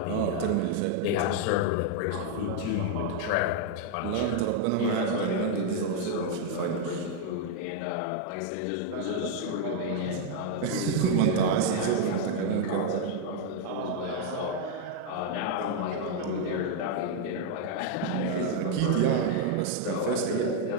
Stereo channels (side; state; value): both; different; correlation 0.00